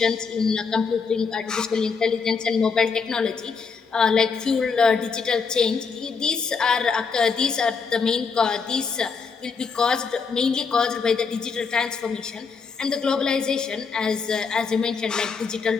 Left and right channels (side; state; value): right; quieter; 5.3 dB